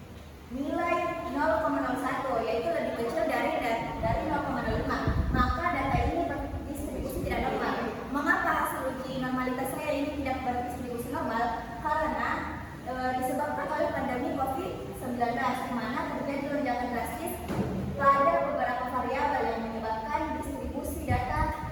nilai 0,01, yaitu lebih kecil dari 0,05. Maka data ini berdistribusi tidak normal. Mengapa hasil uji normalitas saya ini tidak berdistribusi normal? Karena disebabkan oleh pandemi COVID-19, di mana terjadi lonjakan drastis pada beberapa variabel yang menyebabkan distribusi data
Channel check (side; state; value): both; identical; correlation 1.00